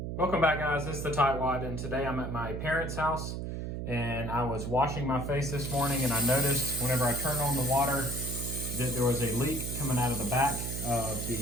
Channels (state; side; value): noise; right; hum, 4 dB below the sound